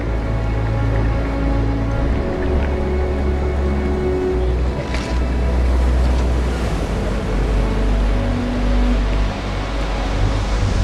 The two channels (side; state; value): both; identical; correlation 1.00